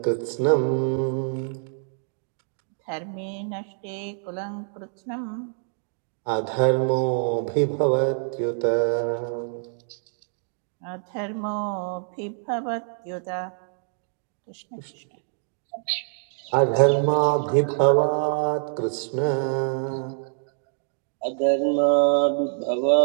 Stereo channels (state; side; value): silent; left; digital silence